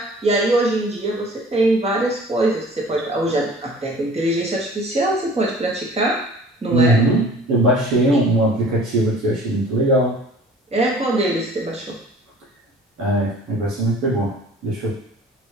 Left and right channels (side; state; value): both; normal; correlation 0.48